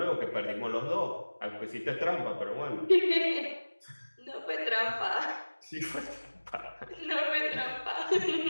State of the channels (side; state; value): both; inverted; correlation -1.00